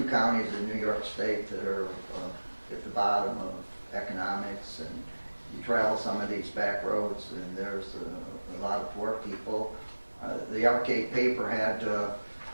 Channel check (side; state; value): both; inverted; correlation -1.00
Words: counties in New York State that are at the bottom of economics, and you travel some of these back roads and there's a lot of poor people. The Alle-Catt paper had